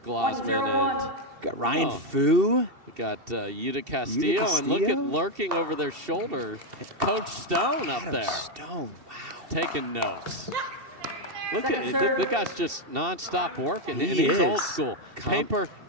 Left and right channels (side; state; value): left; late; 2.7 ms